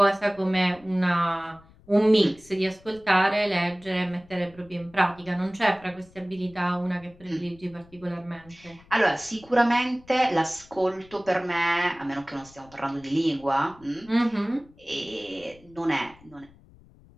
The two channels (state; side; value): noise; left; rumble, 25 dB below the sound